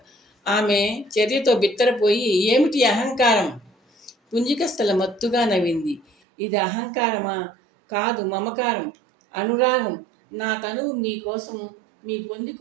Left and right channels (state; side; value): drops out; left; at 6.1 s